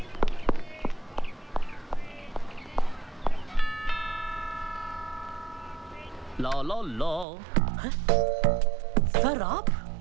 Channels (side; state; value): left; drops out; at 7.2 s